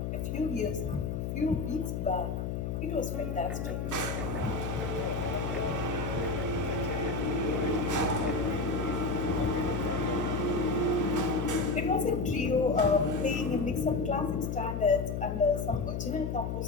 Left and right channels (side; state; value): left; noise; hum, 2 dB below the sound